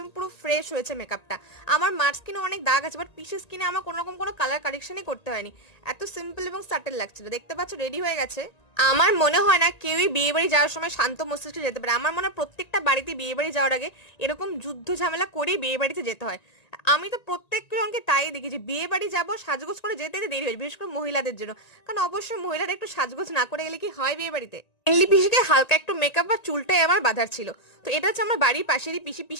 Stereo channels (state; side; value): late; right; 1.9 ms